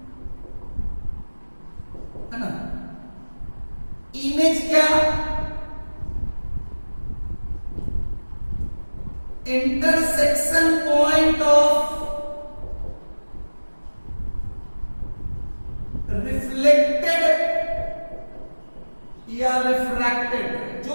है ना? इमेज क्या? इंटरसेक्शन पॉइंट ऑफ रिफ्लेक्टेड या रिफ्रैक्टेड, जो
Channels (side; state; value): both; inverted; correlation -1.00